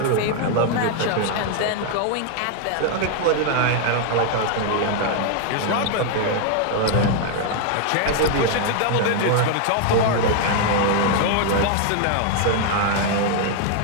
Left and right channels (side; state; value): both; different; correlation 0.00